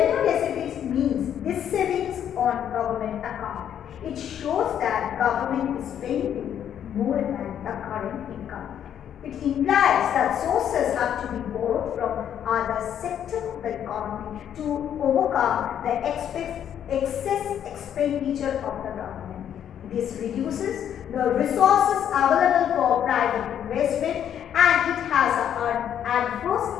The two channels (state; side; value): quieter; right; 9.6 dB